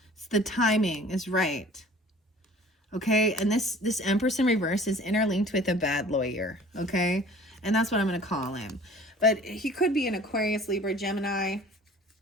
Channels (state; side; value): normal; both; correlation 0.48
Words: It's the timing is right. Okay, and this Empress in reverse is interlinked with a bad lawyer. Okay, and that's what I'm going to call him. But he could be an Aquarius, Libra, Gemini.